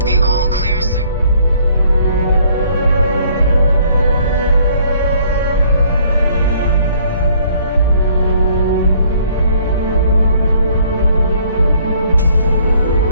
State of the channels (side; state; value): both; inverted; correlation -0.61